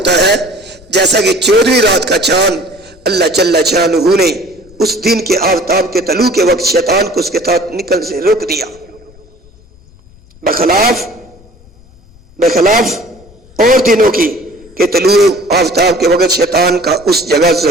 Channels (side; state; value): left; noise; rumble, 26 dB below the sound